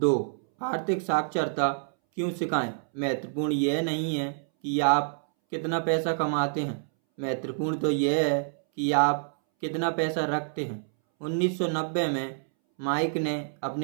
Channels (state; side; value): silent; left; 60 dB below the other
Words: आर्थिक साक्षरता क्यों सिखाएं। महत्वपूर्ण यह नहीं है कि आप कितना पैसा कमाते हैं, महत्वपूर्ण तो यह है कि आप कितना पैसा रखते हैं। 1990 में माइक ने